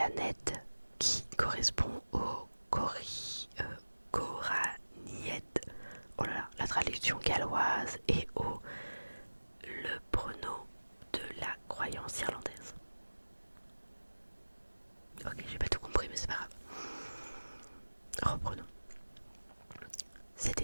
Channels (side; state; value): both; inverted; correlation -1.00